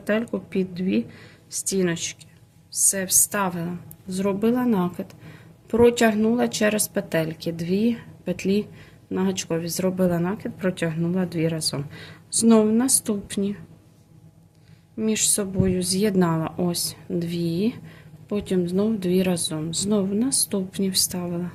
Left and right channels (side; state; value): both; identical; correlation 1.00